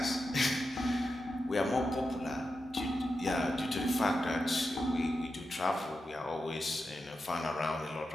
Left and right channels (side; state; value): both; normal; correlation 0.89